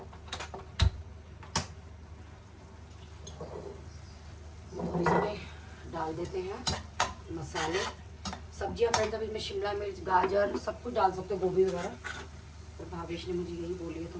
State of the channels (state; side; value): identical; both; correlation 1.00